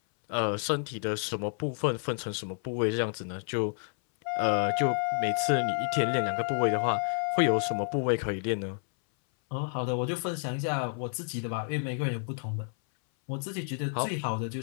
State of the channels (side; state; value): right; silent; 58 dB below the other